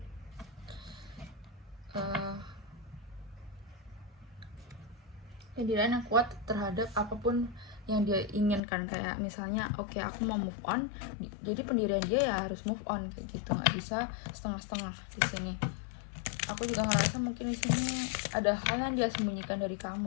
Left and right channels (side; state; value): right; drops out; at 8.6 s